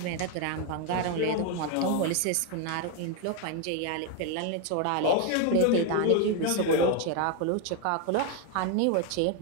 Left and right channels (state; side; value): different; both; correlation 0.01